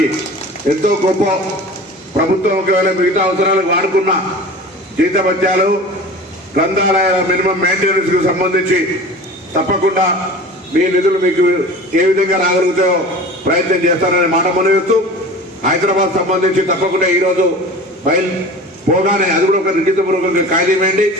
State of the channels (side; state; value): both; normal; correlation 0.37